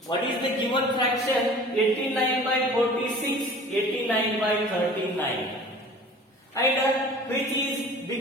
What is the given fraction? 89 by 46, 89 by 39. And which is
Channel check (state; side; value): normal; both; correlation 0.44